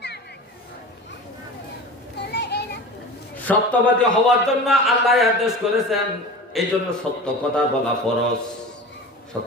সত্যবাদী হওয়ার জন্য আল্লাহ আদেশ করেছেন, এই জন্য সত্য কথা বলা ফরজ।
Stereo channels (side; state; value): both; normal; correlation 0.33